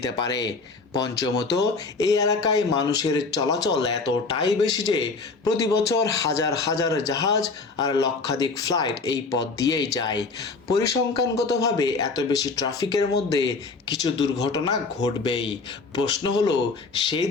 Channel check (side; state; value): right; quieter; 4.1 dB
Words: পারে। পঞ্চমত, এই এলাকায় মানুষের চলাচল এতটাই বেশি যে প্রতি বছর হাজার হাজার জাহাজ আর লক্ষাধিক ফ্লাইট এই পথ দিয়েই যায়। পরিসংখ্যানগতভাবে এত বেশি ট্রাফিকের মধ্যে কিছু দুর্ঘটনা ঘটবেই। প্রশ্ন হলো, সেই